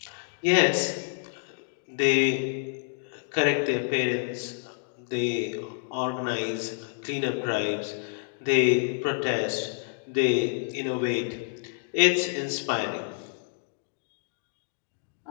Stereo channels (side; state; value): right; silent; digital silence